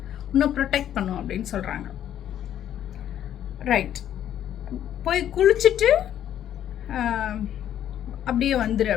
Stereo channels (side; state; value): right; quieter; 10.7 dB